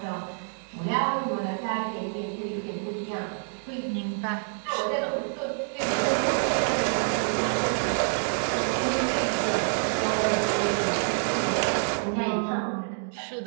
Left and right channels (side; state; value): left; silent; digital silence